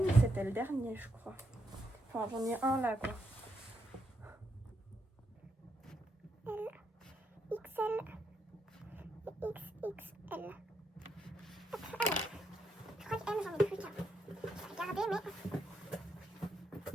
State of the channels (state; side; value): normal; both; correlation 0.80